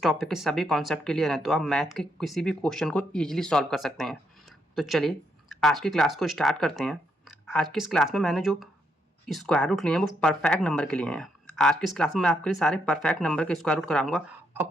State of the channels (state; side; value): normal; both; correlation 0.77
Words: टॉपिक के सभी कॉन्सेप्ट क्लियर हैं तो आप मैथ के किसी भी क्वेश्चन को ईजिली सॉल्व कर सकते हैं। तो चलिए आज की क्लास को स्टार्ट करते हैं। आज की इस क्लास में मैंने जो स्क्वायर रूट लिए हैं वो परफेक्ट नंबर के लिए हैं। आज की इस क्लास में मैं आपके लिए सारे परफेक्ट नंबर के स्क्वायर रूट कराऊंगा